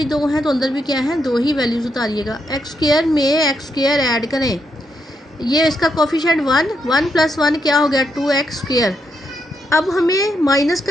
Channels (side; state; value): both; normal; correlation 0.80